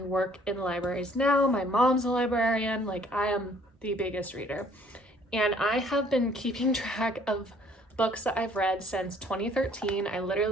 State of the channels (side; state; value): both; normal; correlation 0.59